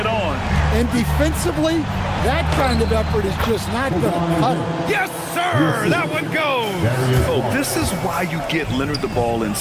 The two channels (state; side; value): identical; both; correlation 1.00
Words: on. And defensively, that kind of effort is just not going to cut it. Yes, sir! That one goes! Oh, this is why you get Leonard the ball